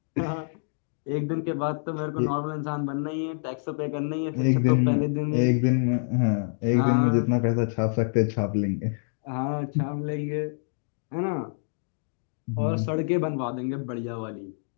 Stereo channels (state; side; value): silent; right; digital silence